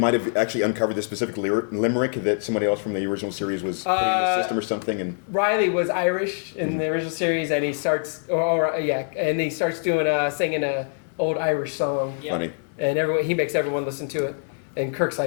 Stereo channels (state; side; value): silent; right; digital silence